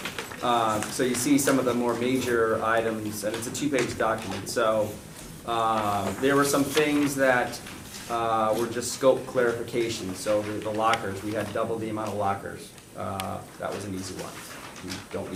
So you see some of the more major items, and it's a 2-page document. So there were some things that were just scope clarification. So the lockers, we had double the amount of lockers. That was an easy one. We don't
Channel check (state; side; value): identical; both; correlation 1.00